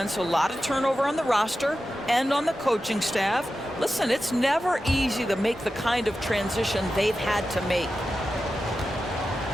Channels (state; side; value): normal; both; correlation 0.92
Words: a lot of turnover on the roster and on the coaching staff. Listen, it's never easy to make the kind of transition they've had to make.